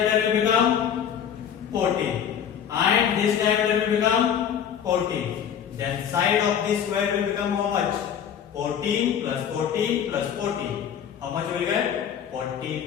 will become 40 and this diameter will become 40. Then side of this square will become how much? 14 plus 14 plus 40. How much will get?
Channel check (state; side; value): quieter; right; 8.7 dB